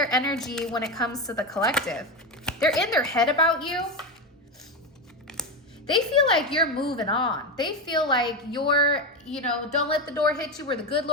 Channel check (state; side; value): normal; both; correlation 0.15